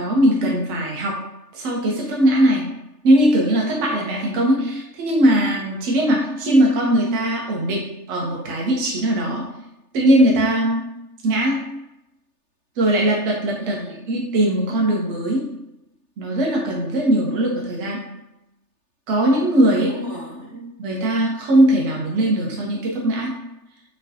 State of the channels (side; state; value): left; late; 3.3 ms